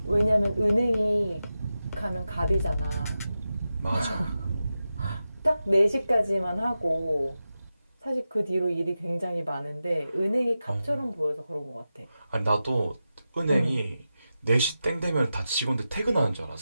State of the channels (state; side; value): inverted; both; correlation -0.91